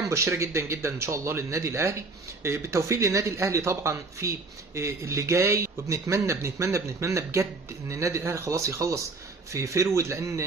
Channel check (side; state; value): left; quieter; 3.6 dB